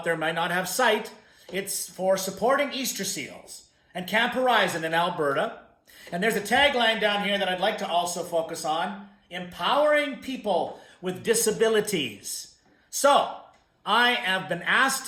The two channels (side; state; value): both; identical; correlation 1.00